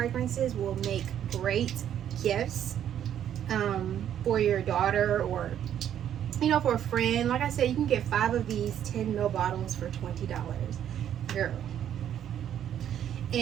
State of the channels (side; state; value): left; quieter; 10.1 dB